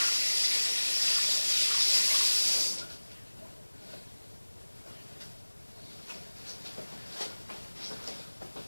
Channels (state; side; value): inverted; both; correlation -1.00